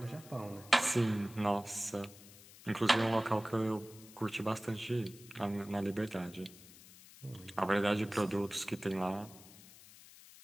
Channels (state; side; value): noise; left; hiss, 20 dB below the sound